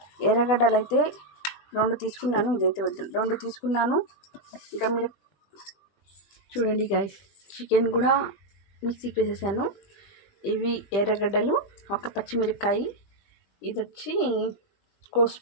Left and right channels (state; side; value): late; right; 20 ms